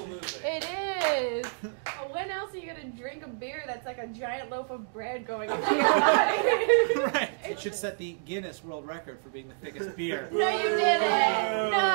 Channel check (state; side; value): silent; left; digital silence